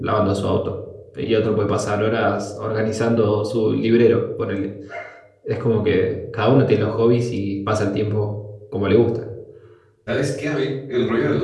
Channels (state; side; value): identical; both; correlation 1.00